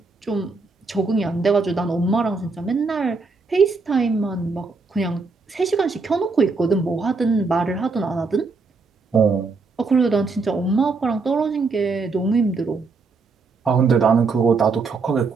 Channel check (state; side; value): quieter; left; 4.2 dB